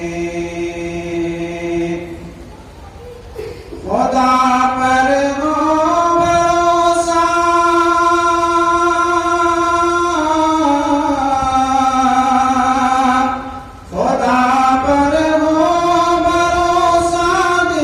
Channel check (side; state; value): both; identical; correlation 1.00